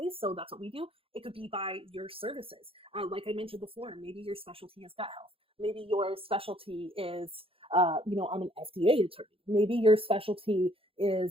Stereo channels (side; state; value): left; late; 0.27 ms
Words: So that's what we do. It could be by your services. Like I mentioned before, maybe your specialty is gut health. Maybe your specialty is, I'm an FDA attorney. Maybe your specialty